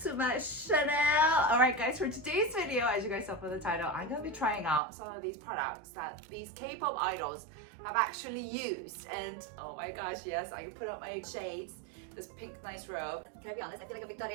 to my channel. Alright guys, for today's video, as you guys saw from the title, I'm gonna be trying out some of these products that these K-pop idols have actually used. And oh my gosh, yes, I can put up my shades. This pink nice robe. Can I be honest? I feel like a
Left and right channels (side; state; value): left; drops out; at 4.8 s